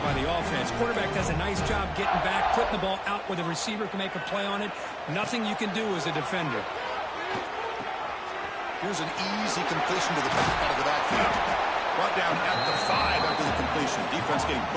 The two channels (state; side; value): identical; both; correlation 1.00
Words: by the offense. Quarterback does a nice job getting back, putting the ball out where the receiver can make a play on it. Nothing you can do as a defender. Here's an easy completion to the back out of the backfield. Brought down at the 5 after the completion. Defense getting